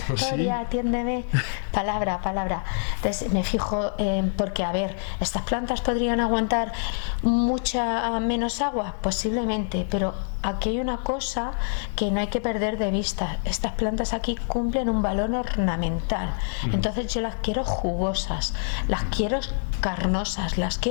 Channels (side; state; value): right; silent; digital silence